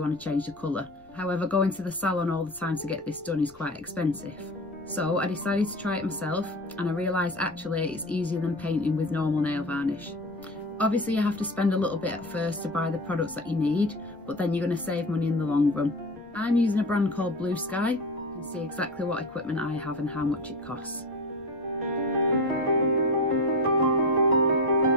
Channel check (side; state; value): left; noise; rumble, 27 dB below the sound